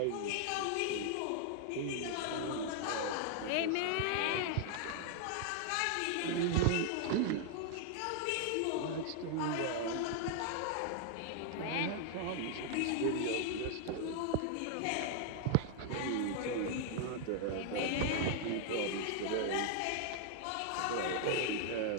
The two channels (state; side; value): different; both; correlation 0.00